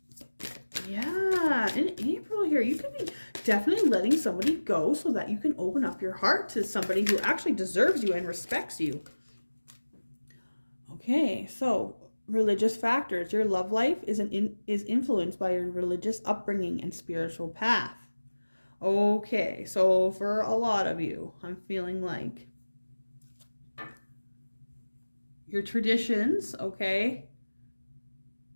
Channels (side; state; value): both; inverted; correlation -1.00